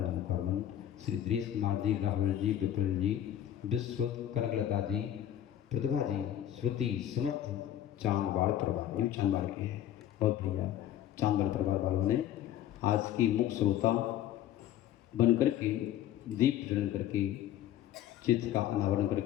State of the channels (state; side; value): quieter; right; 11.7 dB